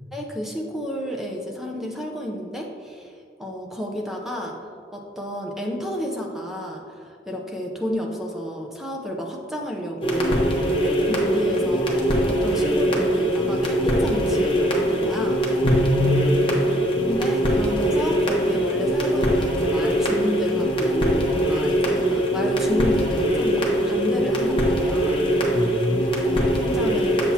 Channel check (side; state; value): both; normal; correlation 0.64